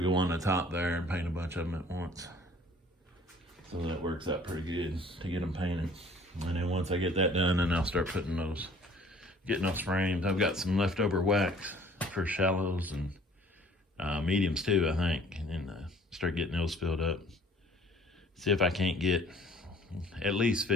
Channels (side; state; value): both; normal; correlation 0.54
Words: on the top there and paint a bunch of them at once. So that works out pretty good to get them painted. And then once I get that done, then I'll start getting those frames. I've got some leftover wax for shallows and mediums too, I think. And then start getting those filled up. See if I can't get at least